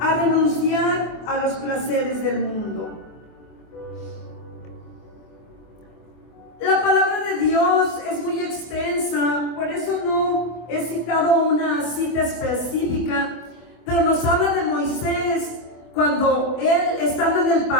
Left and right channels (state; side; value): late; right; 24 ms